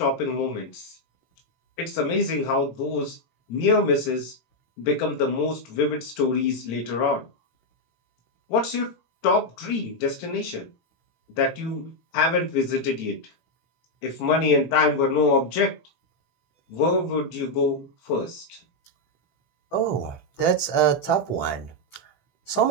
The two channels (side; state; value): right; late; 18 ms